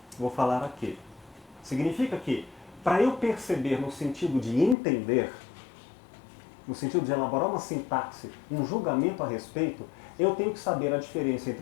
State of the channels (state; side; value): drops out; right; at 4.8 s